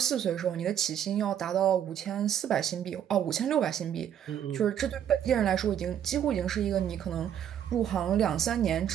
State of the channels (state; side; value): quieter; left; 9.7 dB